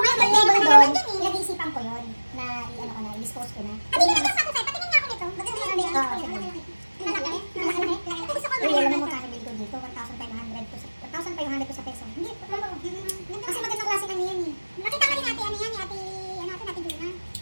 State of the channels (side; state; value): both; inverted; correlation -1.00